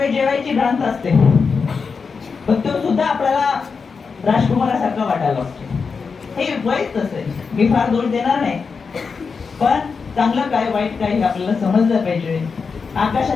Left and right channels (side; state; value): right; quieter; 5.2 dB